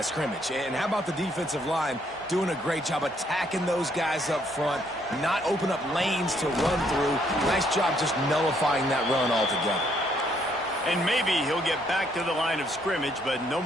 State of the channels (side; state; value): both; normal; correlation 0.69